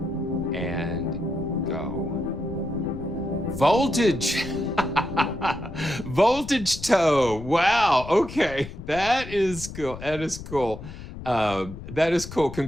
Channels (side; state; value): left; noise; rumble, 12 dB below the sound